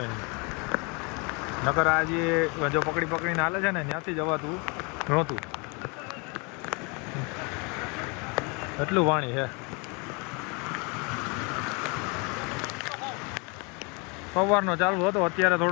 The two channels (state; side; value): quieter; right; 31.3 dB